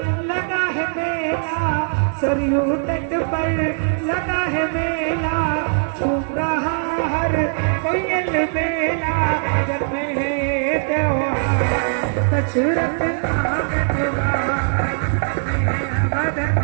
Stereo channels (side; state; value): left; silent; 65 dB below the other